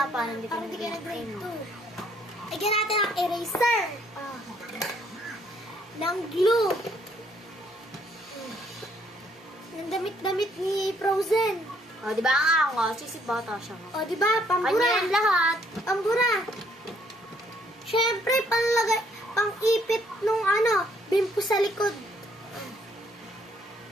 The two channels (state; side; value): normal; both; correlation 0.67